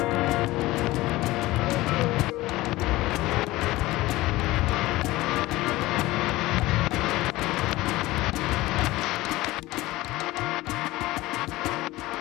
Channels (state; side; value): quieter; right; 18.5 dB